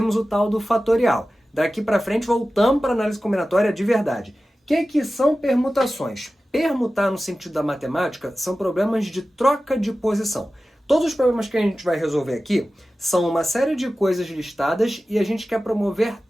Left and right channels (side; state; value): both; normal; correlation 0.95